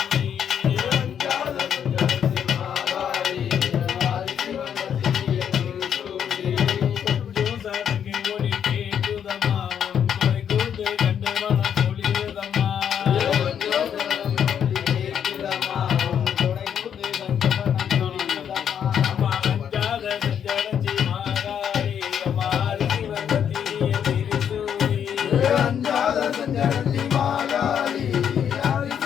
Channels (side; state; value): right; quieter; 8.5 dB